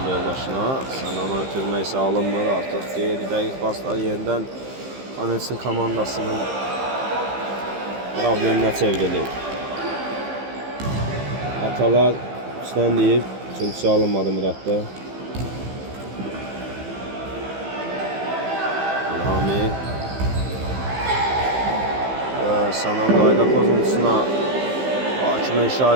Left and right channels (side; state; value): left; late; 15 ms